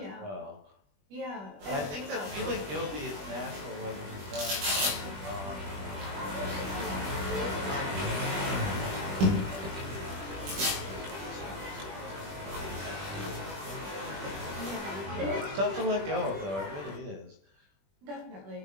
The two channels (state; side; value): late; left; 21 ms